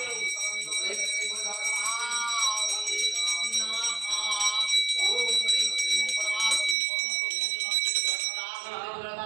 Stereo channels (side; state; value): left; drops out; at 6.8 s